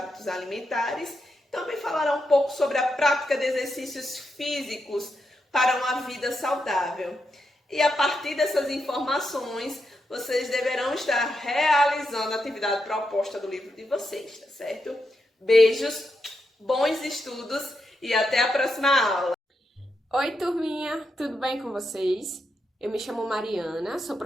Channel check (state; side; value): normal; both; correlation 0.84